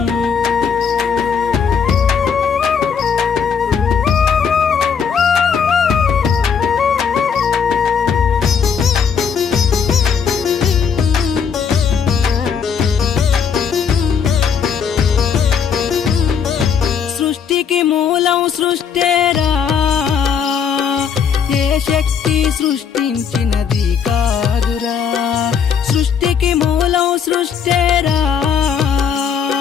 సృష్టికి మూలం సృష్టేరా, ఏ శక్తి సృష్టించినది కాదురా. సృష్టికి మూలం సృష్టేరా,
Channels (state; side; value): quieter; right; 6.9 dB